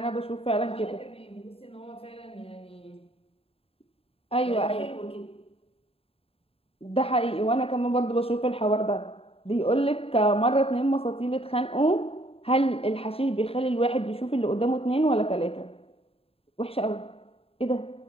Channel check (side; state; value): right; late; 0.27 ms